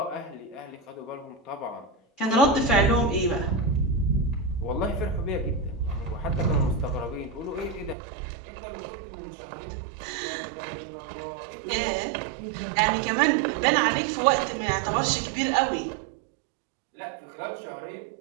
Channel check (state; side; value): drops out; left; at 8.0 s